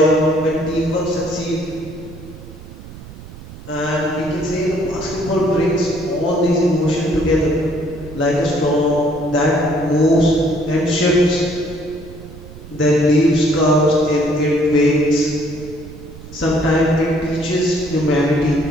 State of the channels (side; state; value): right; noise; rumble, 16 dB below the sound